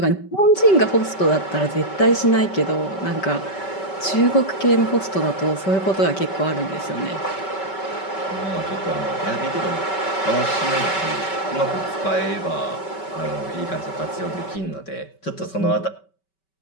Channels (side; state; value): right; late; 5.2 ms